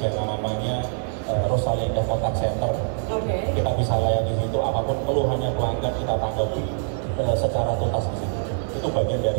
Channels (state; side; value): silent; left; 63 dB below the other